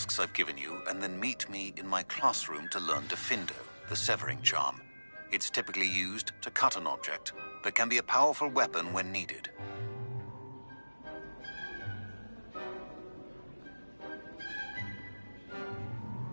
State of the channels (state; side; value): inverted; both; correlation -1.00